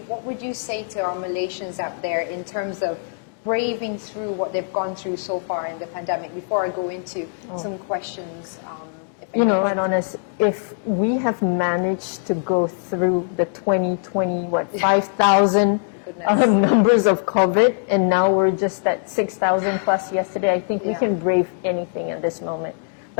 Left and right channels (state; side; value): silent; right; digital silence